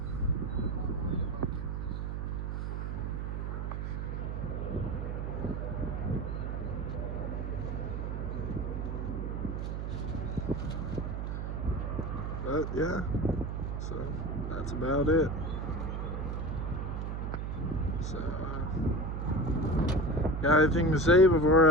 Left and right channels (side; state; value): right; noise; hum, 3 dB below the sound